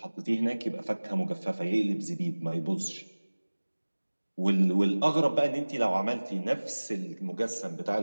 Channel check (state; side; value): inverted; both; correlation -1.00